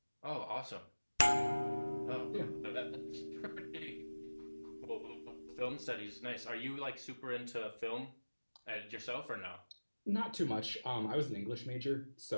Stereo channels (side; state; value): both; inverted; correlation -1.00